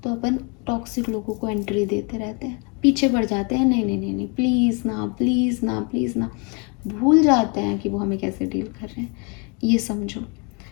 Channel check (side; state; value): right; quieter; 33.4 dB